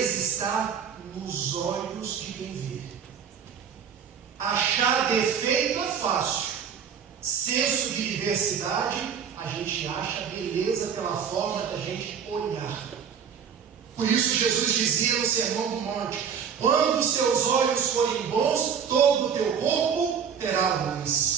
está nos olhos de quem vê. Achar defeito é fácil. Senso de diversidade, a gente acha beleza pela forma da gente olhar. Por isso Jesus dizia no Sermão do Monte: Quando os seus olhos forem bons, todo o teu corpo terá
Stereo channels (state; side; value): quieter; left; 7.3 dB